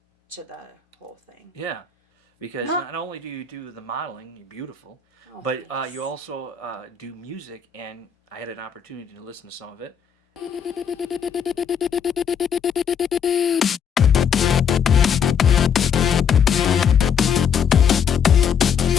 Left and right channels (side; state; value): right; quieter; 7.2 dB